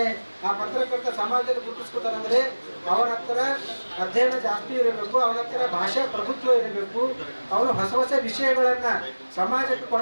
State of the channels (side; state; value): both; inverted; correlation -1.00